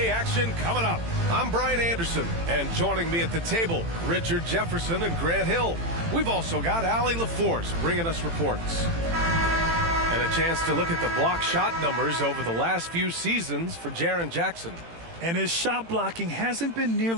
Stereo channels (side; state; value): left; late; 18 ms